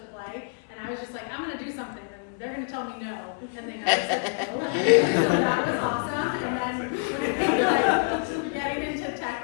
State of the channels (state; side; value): silent; right; 60 dB below the other